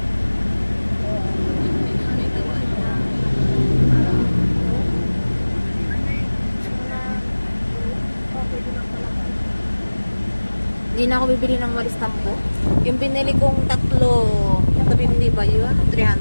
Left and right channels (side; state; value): both; inverted; correlation -1.00